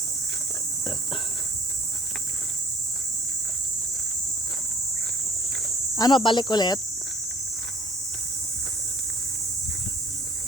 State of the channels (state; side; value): normal; both; correlation 0.54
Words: Ano, balik ulit?